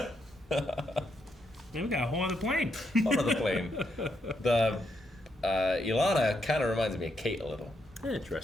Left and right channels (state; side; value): normal; both; correlation 0.79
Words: Yeah, we got a whole other plane. Whole other plane. The Ilana kind of reminds me of Kate a little.